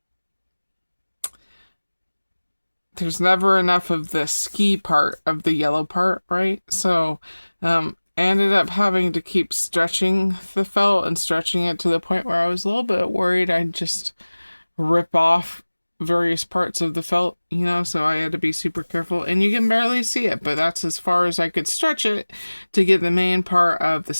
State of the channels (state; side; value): inverted; both; correlation -1.00